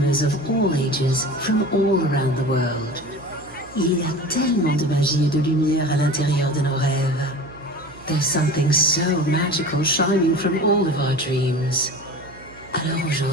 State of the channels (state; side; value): noise; right; hum, 21 dB below the sound